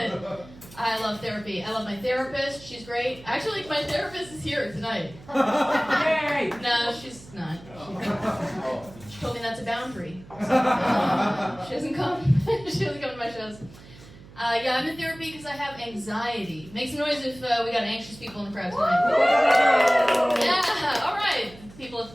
I love therapy. I love my therapist. She's great. Actually, my therapist is here tonight. Yay! No, she's not. She told me that's a boundary. She doesn't come. She doesn't come to my shows. Yeah, I'm in therapy because I have anxiety. Make some noise if we got anxious people in the crowd tonight. Yeah, all right. People at the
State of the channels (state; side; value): noise; right; hum, 20 dB below the sound